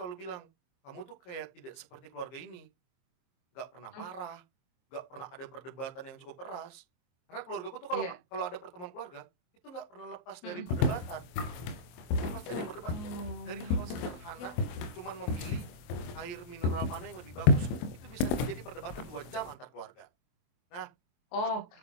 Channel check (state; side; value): late; right; 24 ms